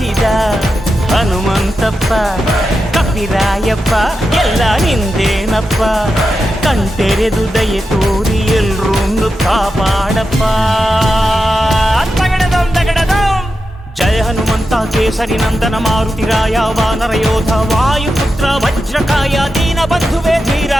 ಹನುಮಂತಪ್ಪ ಕಪಿರಾಯಪ್ಪ ಎಲ್ಲ ನಿಂದೇನಪ್ಪ. ಕಣ್ತೆರೆದು ದಯೆ ತೋರಿ ಎಲ್ರೂ ಕಾಪಾಡಪ್ಪ. ಜಯ ಹನುಮಂತ ಕೇಸರಿ ನಂದನ ಮಾರುತಿರಾಯ ವಾನರ ಯೋಧ ವಾಯುಪುತ್ರ ವಜ್ರಕಾಯ ದೀನ ಬಂಧುವೇ ಧೀರ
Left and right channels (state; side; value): normal; both; correlation 0.90